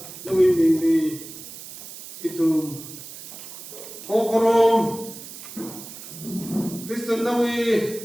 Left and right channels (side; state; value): right; noise; hiss, 13 dB below the sound